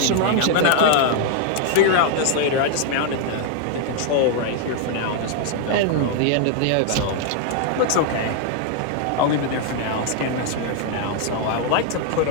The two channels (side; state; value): both; different; correlation 0.00